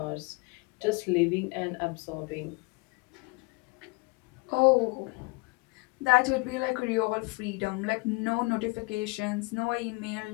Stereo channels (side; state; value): right; quieter; 27.1 dB